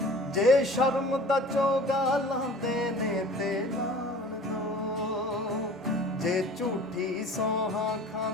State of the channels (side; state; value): both; normal; correlation 0.44